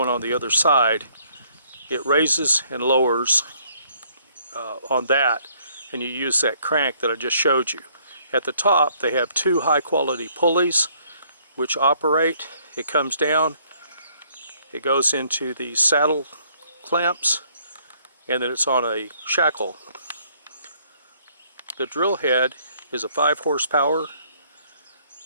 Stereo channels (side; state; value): both; inverted; correlation -0.64